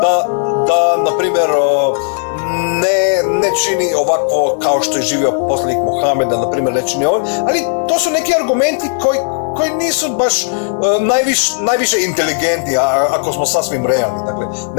da na primjer, ne čini ovako kao što je živio poslanik Muhammed, da na primjer ne čini ovo, ali to su neki argumenti koji nisu baš najviše inteligentni, ako smo sasvim realni. Dakle,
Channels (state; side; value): silent; right; digital silence